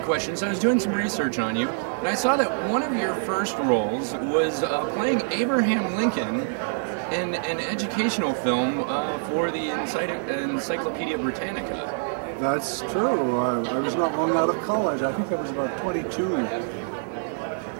questions. I was doing some research on you, and I saw that one of your first roles was playing Abraham Lincoln in an educational film for the Encyclopedia Britannica. That's true. I was not long out of college. I think I was about 22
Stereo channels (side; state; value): left; silent; digital silence